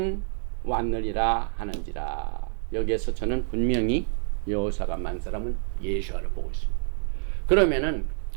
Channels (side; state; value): left; silent; digital silence